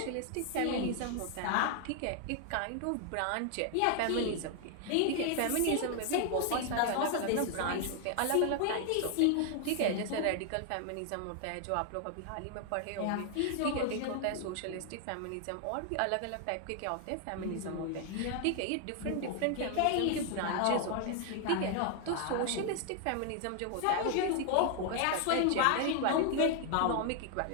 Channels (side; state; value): both; different; correlation 0.00